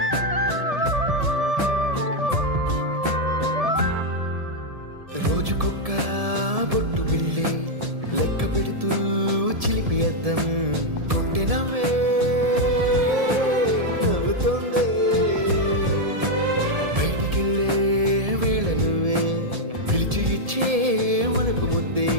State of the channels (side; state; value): left; late; 1.7 ms